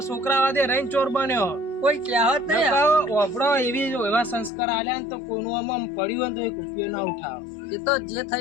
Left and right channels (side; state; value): right; drops out; at 4.5 s